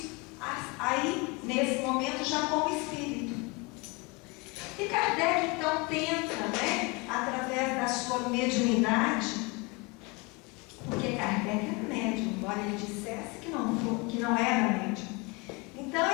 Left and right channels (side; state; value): right; quieter; 27.8 dB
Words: aí nesse momento já como espírito. E Kardec então tenta, através da sua mediunidade, porque Kardec era médium, embora ele dissesse que não era médium. Então